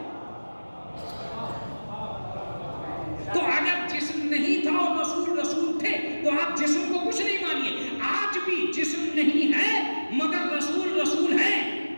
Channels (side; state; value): both; inverted; correlation -1.00